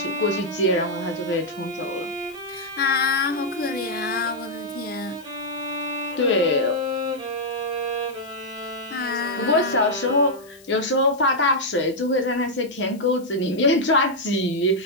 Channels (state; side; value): noise; left; hiss, 25 dB below the sound